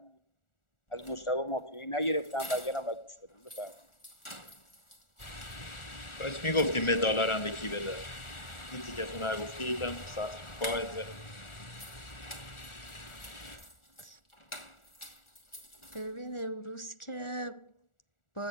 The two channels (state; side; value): late; right; 1.4 ms